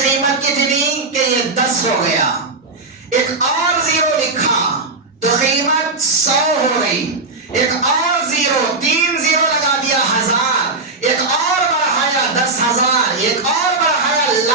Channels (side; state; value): left; quieter; 3.5 dB